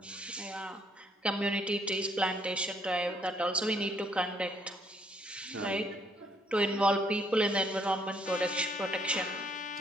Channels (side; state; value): both; normal; correlation 0.68